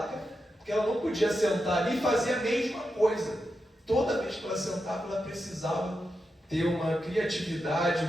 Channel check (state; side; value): normal; both; correlation 0.88